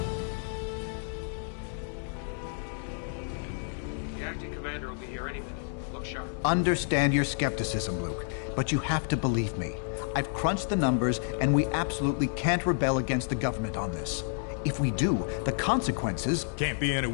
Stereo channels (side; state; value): right; silent; 58 dB below the other